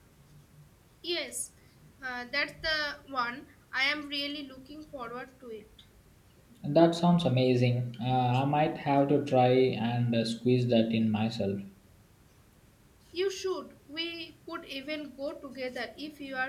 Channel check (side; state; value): both; identical; correlation 1.00